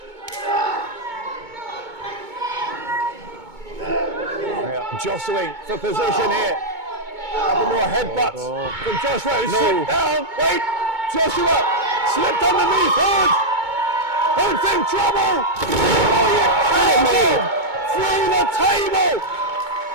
Jostling for position here. Couple more headbutts from Joshua. Who slipped down. Wait, Joshua slipped underneath Hood. Hood's in trouble. Oh, you're kidding me. Through the table.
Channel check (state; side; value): late; left; 2.2 ms